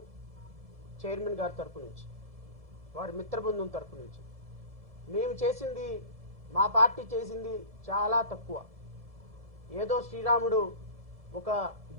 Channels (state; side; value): late; left; 1.7 ms